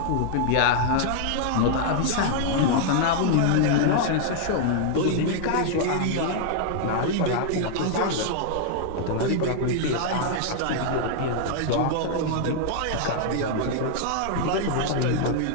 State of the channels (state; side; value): different; both; correlation -0.01